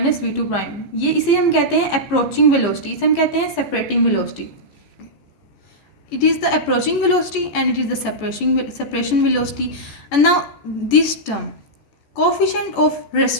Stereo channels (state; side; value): late; right; 14 ms